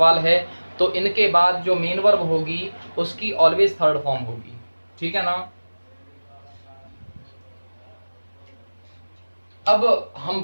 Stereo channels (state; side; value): inverted; both; correlation -1.00